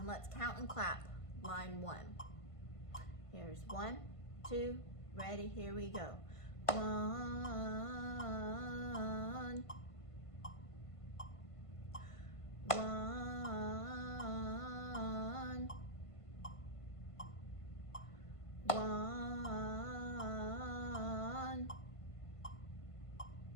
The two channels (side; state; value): right; late; 1.5 ms